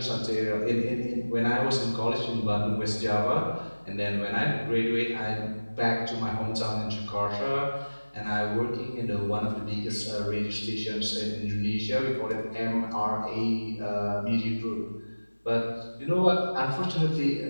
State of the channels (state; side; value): inverted; both; correlation -1.00